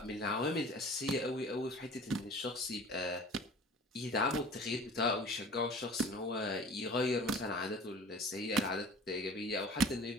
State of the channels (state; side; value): normal; both; correlation 0.43